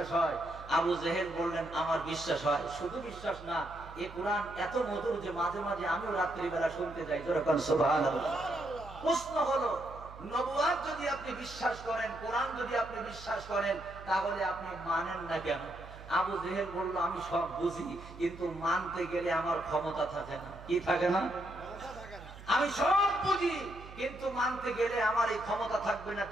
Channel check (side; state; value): right; noise; hum, 16 dB below the sound